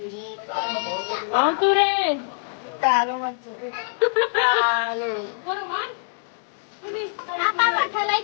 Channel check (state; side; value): silent; right; digital silence